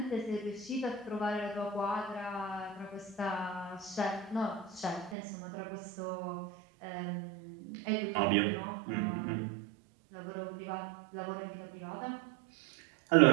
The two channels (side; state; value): left; drops out; at 5.2 s